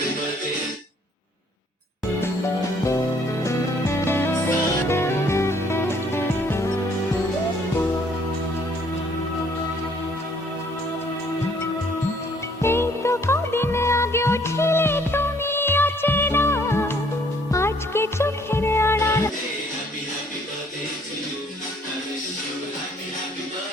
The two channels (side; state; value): both; normal; correlation 0.62